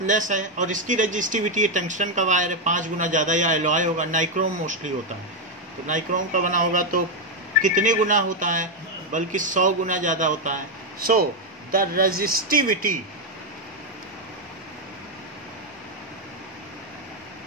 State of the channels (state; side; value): normal; both; correlation 0.03